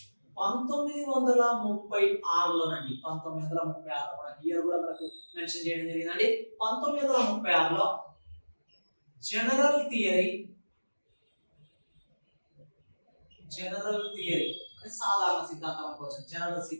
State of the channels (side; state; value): both; inverted; correlation -1.00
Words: 1936లోనండి. 1936 మనకి ఇయర్ కూడా మనకు మెన్షన్ చేయడం జరిగిందండి. 1936లో జనరల్ థియరీ అంటే సాధారణ సిద్ధాంతం అనుకోవచ్చు. జనరల్